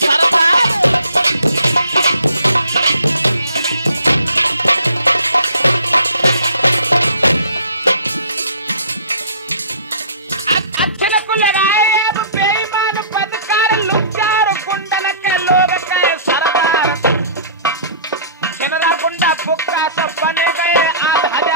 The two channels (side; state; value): both; inverted; correlation -0.49